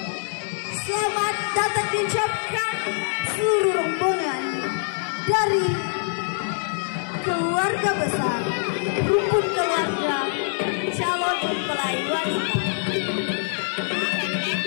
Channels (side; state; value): right; silent; 62 dB below the other